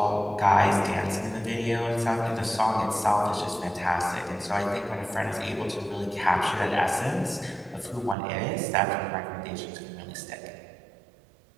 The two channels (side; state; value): left; drops out; at 8.2 s